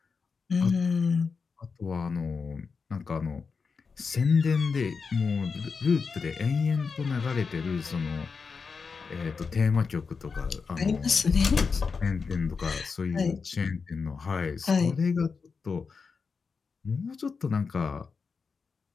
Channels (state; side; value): quieter; right; 5.1 dB